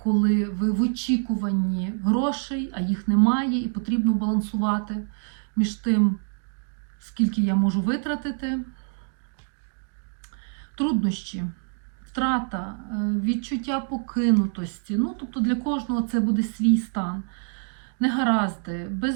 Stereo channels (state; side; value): silent; left; 57 dB below the other